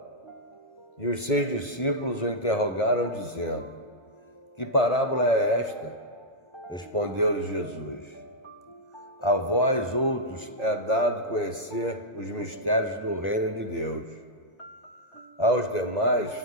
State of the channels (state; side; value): late; right; 2.1 ms